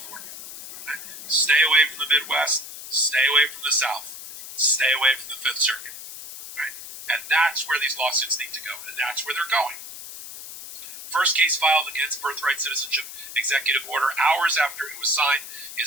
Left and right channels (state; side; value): noise; left; hiss, 12 dB below the sound